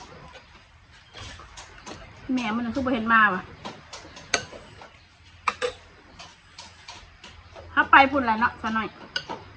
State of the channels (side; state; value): both; identical; correlation 1.00